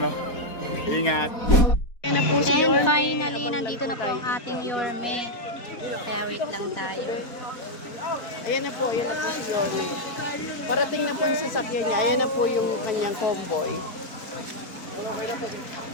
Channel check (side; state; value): right; late; 4.1 ms